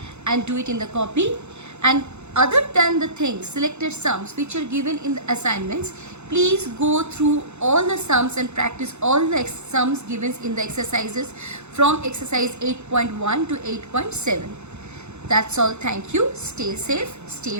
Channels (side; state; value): left; late; 0.82 ms